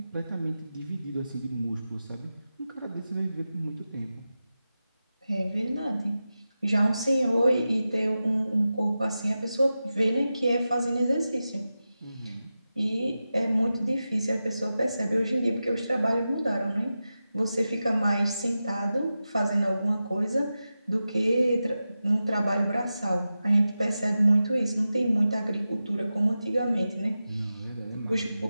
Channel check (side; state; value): both; inverted; correlation -0.93